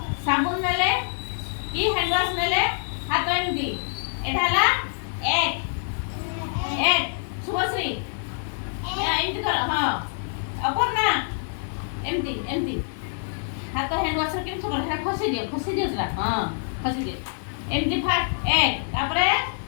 साबुन नेले की हैंड वॉश नेले हाथ एमती एठाला एक शुभश्री एमती कर। हां अपर्णा एमती एमती हाथ हैंड वॉश केम सब हेटा खसी दियो जरा। हां खसी दियो एमती फास्ट एक तापरे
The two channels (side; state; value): right; silent; digital silence